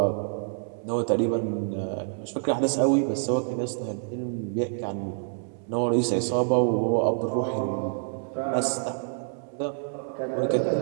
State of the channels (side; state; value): left; silent; 60 dB below the other